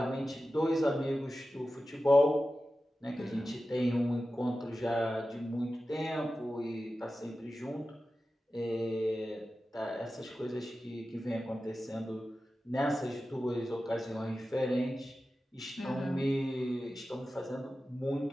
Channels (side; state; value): both; normal; correlation 0.94